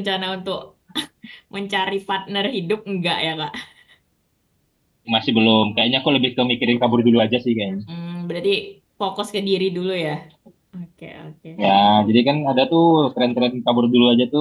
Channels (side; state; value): both; identical; correlation 1.00